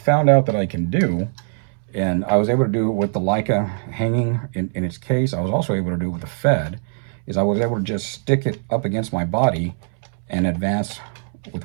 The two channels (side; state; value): left; silent; 65 dB below the other